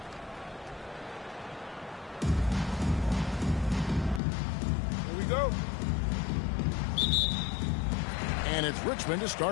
Here we go. And it's Richmond to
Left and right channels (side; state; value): right; drops out; at 4.2 s